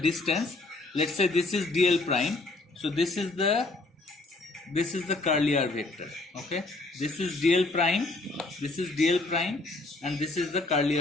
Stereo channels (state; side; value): quieter; right; 3.1 dB